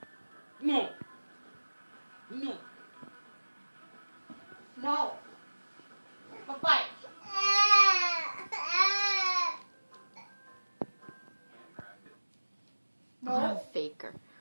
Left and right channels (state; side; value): inverted; both; correlation -1.00